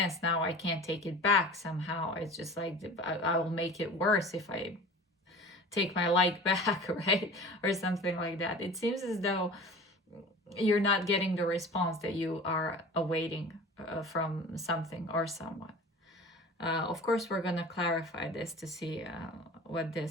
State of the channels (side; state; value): both; normal; correlation 0.39